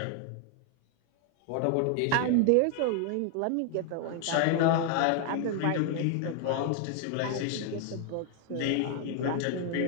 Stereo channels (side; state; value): both; different; correlation 0.00